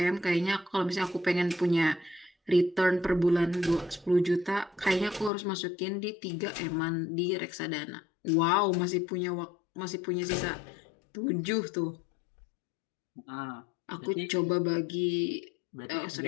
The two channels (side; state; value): right; drops out; at 5.3 s